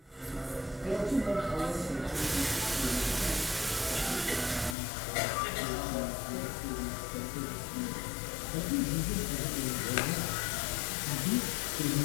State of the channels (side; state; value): right; drops out; at 4.8 s